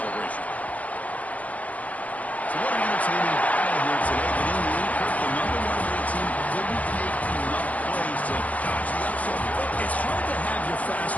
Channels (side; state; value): right; late; 0.071 ms